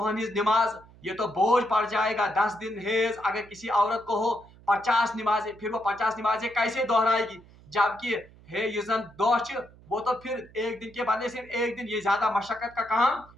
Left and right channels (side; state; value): right; noise; hum, 24 dB below the sound